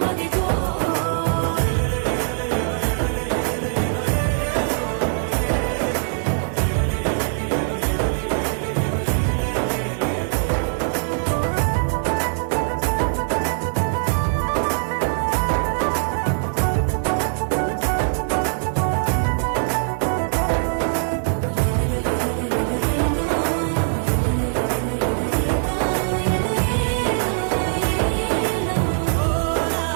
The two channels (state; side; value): silent; left; digital silence